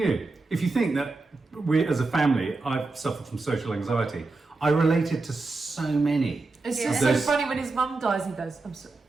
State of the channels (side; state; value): left; quieter; 3.6 dB